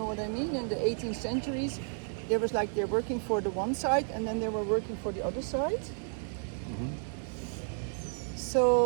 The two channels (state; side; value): silent; left; 56 dB below the other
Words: what I mean. In the 18th centuries, there was like they're working for the one side, and then they were working for the other side. Mm-hmm.